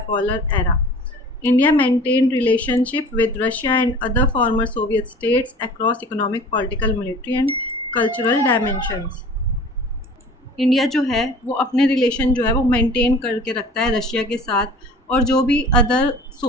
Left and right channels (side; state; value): both; normal; correlation 0.44